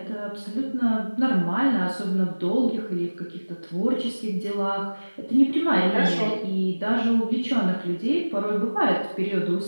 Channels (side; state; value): both; inverted; correlation -1.00